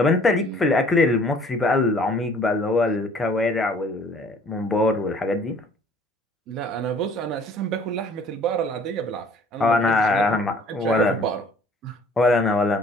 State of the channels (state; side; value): normal; both; correlation 0.55